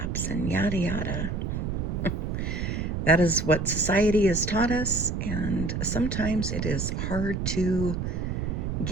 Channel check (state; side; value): noise; right; rumble, 2 dB below the sound